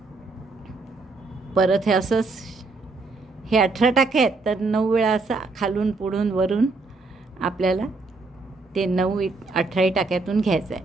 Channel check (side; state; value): left; quieter; 3.7 dB